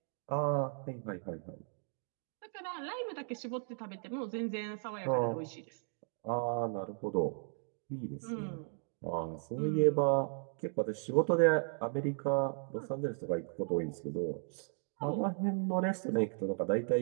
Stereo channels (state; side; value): silent; left; 54 dB below the other